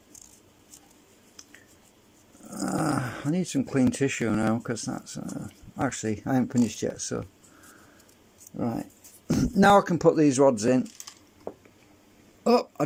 I need some clean tissue now because that's actually I haven't finished yet. So right now I can put these rods in. Oh, I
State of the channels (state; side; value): identical; both; correlation 1.00